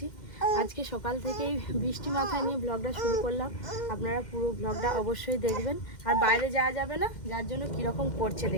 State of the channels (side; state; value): right; late; 2.1 ms